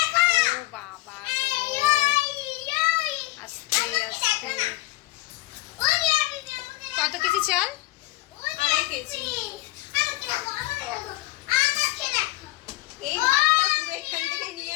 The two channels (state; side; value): quieter; right; 19.1 dB